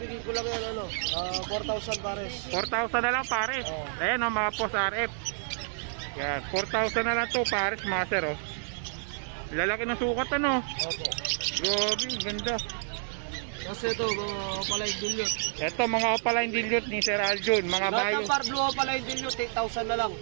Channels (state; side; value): silent; left; digital silence